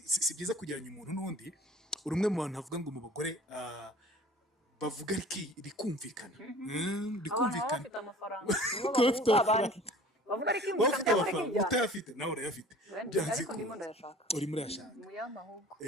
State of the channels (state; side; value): normal; both; correlation 0.46